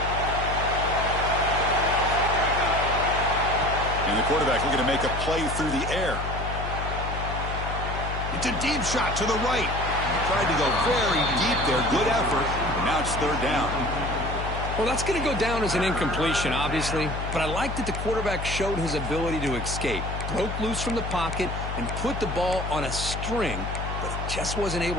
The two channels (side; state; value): left; noise; hum, 5 dB below the sound